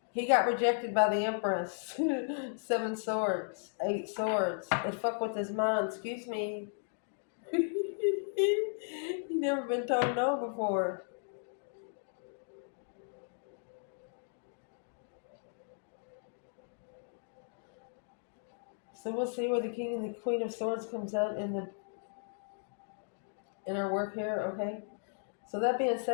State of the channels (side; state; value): right; silent; digital silence